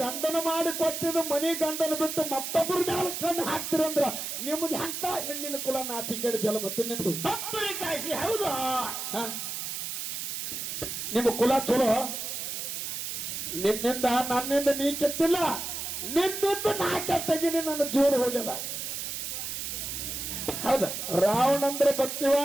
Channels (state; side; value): noise; right; hiss, 4 dB below the sound